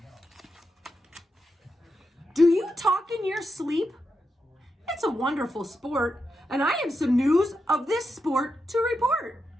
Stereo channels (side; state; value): both; normal; correlation 0.86